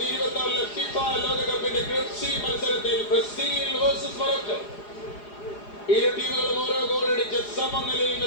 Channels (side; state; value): right; late; 4.9 ms